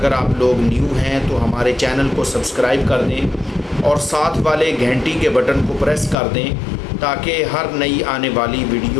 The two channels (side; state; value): right; drops out; at 6.2 s